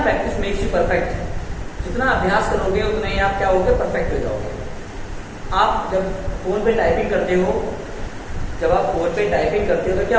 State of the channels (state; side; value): identical; both; correlation 1.00